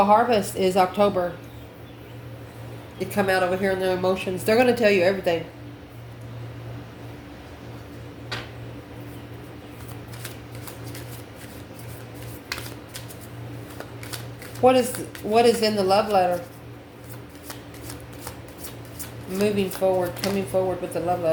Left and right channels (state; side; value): identical; both; correlation 1.00